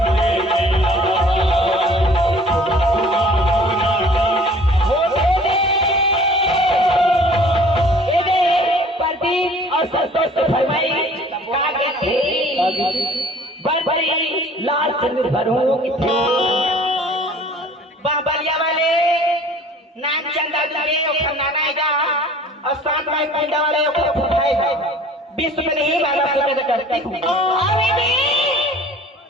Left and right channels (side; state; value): both; normal; correlation 0.50